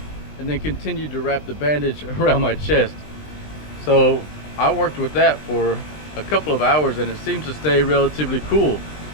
and then continued to wrap the bandage around my chest. So I worked with that for a couple of hours, and it seems to stay relatively cool.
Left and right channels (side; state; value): right; late; 20 ms